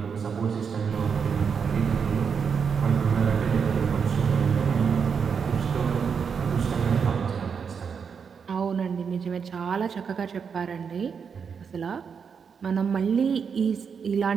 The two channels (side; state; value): left; quieter; 6.4 dB